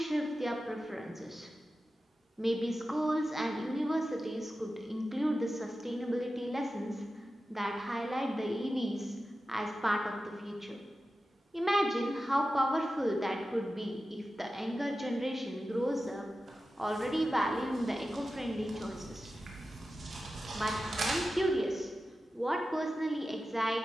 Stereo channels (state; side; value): normal; both; correlation 0.93